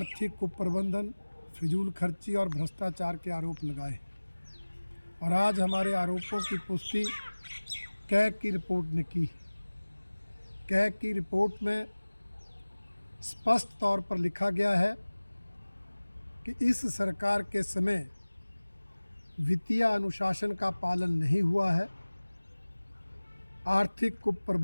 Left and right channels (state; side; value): inverted; both; correlation -1.00